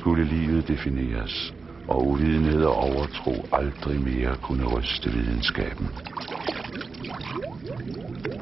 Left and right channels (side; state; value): left; quieter; 4.3 dB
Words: livet defineres, og uvidenhed og overtro aldrig mere kunne ryste videnskaben.